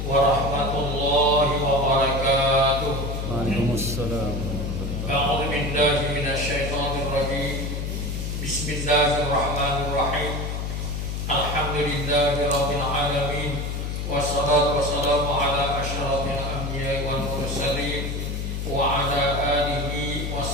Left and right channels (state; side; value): noise; left; hum, 3 dB below the sound